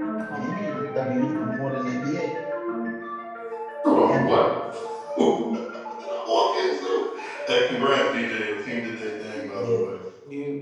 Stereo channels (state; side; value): identical; both; correlation 1.00